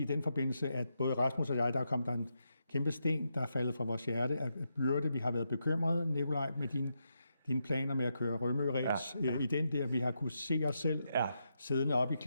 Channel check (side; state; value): both; inverted; correlation -0.83